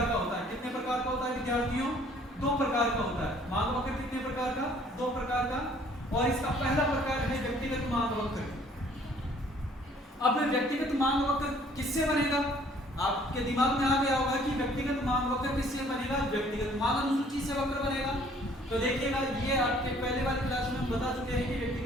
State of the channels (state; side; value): normal; both; correlation 0.58